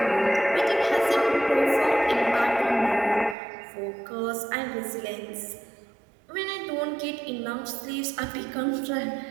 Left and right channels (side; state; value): left; drops out; at 3.4 s